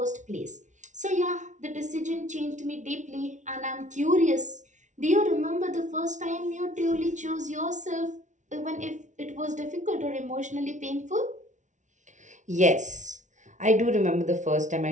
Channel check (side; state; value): left; late; 0.36 ms